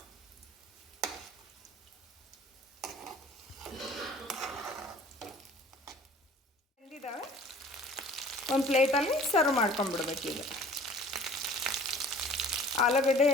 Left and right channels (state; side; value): normal; both; correlation 0.49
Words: ಬೆಂದಿದ್ದಾವೆ, ಒಂದು ಪ್ಲೇಟಲ್ಲಿ ಸರ್ವ್ ಮಾಡ್ಕೊಂಡ್ಬಿಡ್ಬೇಕು. ಈಗ ಆಲೂಗಡ್ಡೆ